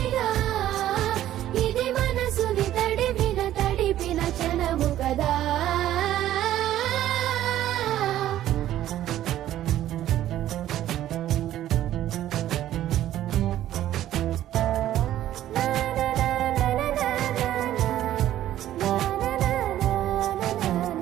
ఇది మనసుని తడిపిన క్షణము కదా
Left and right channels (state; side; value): quieter; left; 12.8 dB